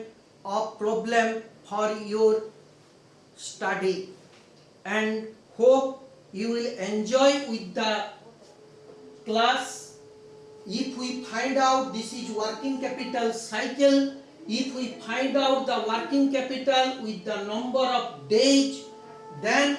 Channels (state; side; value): identical; both; correlation 1.00